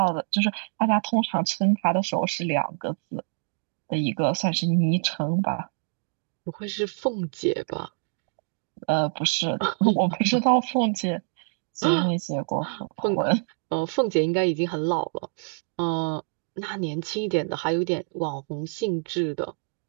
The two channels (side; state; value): left; silent; digital silence